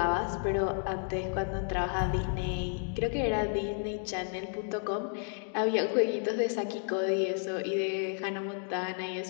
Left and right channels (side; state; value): right; silent; 57 dB below the other